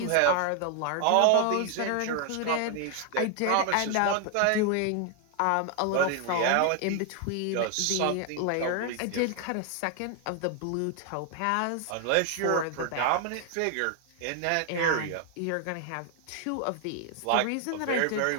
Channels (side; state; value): both; different; correlation 0.00